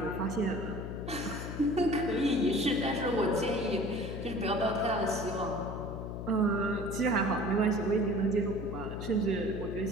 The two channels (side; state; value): left; noise; hum, 6 dB below the sound